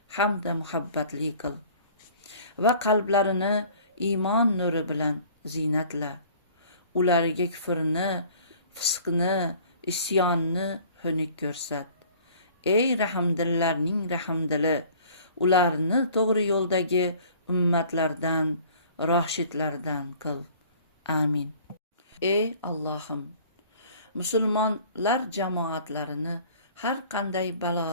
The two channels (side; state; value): both; inverted; correlation -0.50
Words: hamda muhabbatli qil va qalblarini iymon nuri bilan ziynatla. Ularga kufrni, fisqni, isyonni xunuk ko'rsat. Ey rahmdillarning rahmdili, ularni to'g'ri yo'ldagi ummatlardan, roshidlardan qil. Amin. Ey Allohim, musulmonlar jamoatlarini har qanday